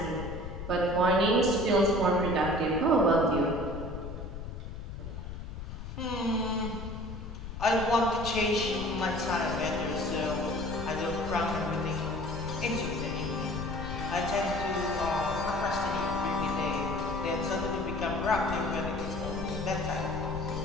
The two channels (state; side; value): noise; left; rumble, 8 dB below the sound